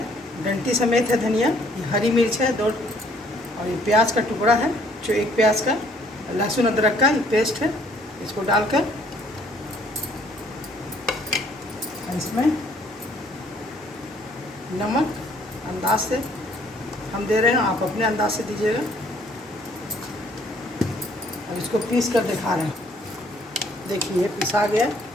डंटी समेत है धनिया, ये हरी मिर्च है 2, और ये प्याज का टुकड़ा है जो 1 प्याज का, लहसुन अदरक का ये पेस्ट है। इसको डालकर इसमें नमक अंदाज से हम दे रहे हैं, आप अपने अंदाज से दीजिएगा। और इसको पीस कर दिखा रहे हैं। देखिए पिसा गया।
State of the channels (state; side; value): normal; both; correlation 0.62